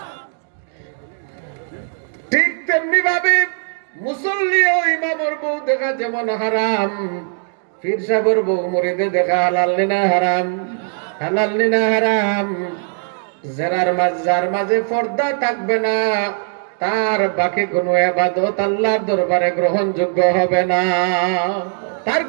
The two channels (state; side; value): silent; left; 67 dB below the other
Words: ঠিক তেমনি ভাবে মুসল্লি ও ইমামের বউ দেখা যেমন হারাম, পীর সাহেবের বউ মুরিদে দেখা হালাল না হারাম? হালাল না হারাম। যার মাঝে পর্দা থাকবে না, তার বাকি কোনো ইবাদত আল্লাহর দরবারে গ্রহণযোগ্য হবে না। তার